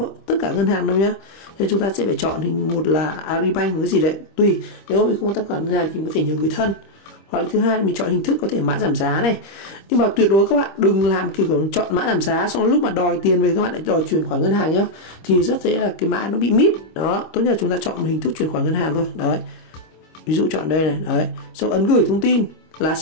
tất cả ngân hàng đâu nhá. Nên chúng ta sẽ phải chọn hình, một là Agribank, một cái gì đấy tùy. Nếu mình không có tài khoản ngân hàng thì có thể nhờ người thân. Hoặc là thứ hai là mình chọn hình thức có thể mã giảm giá này. Nhưng mà tuyệt đối các bạn đừng làm kiểu chọn mã giảm giá xong lúc mà đòi tiền về các bạn lại đòi chuyển khoản ngân hàng nhá. Thì rất dễ là cái mã nó bị mít. Đó, tốt nhất là chúng ta chọn một hình thức chuyển khoản ngân hàng thôi. Đấy. Ví dụ chọn đây này, đấy. Xong ấn gửi thông tin là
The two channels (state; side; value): late; right; 25 ms